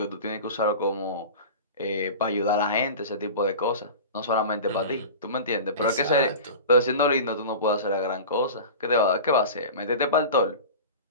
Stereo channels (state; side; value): inverted; both; correlation -0.33